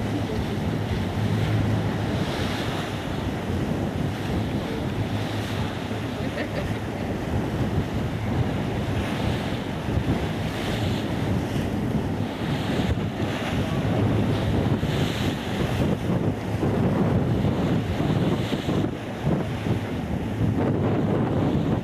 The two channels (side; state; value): both; identical; correlation 1.00